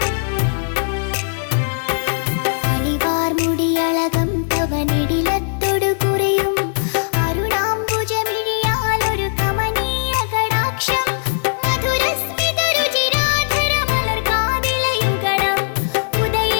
അണിവാർമുടിയളകം തവനിടിലത്തൊടു കുറിയും അരുണാംബുജമിഴിയാലൊരു കമനീയ കടാക്ഷം മധുരസ്മിത രുചിരാധര മലർകാതിലയുഗണം ഉദയേ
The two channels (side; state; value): right; silent; 67 dB below the other